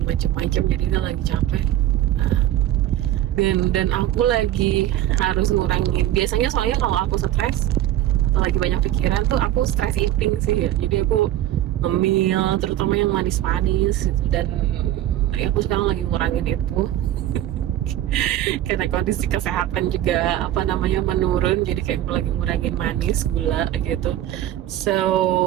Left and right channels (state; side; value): quieter; left; 13.1 dB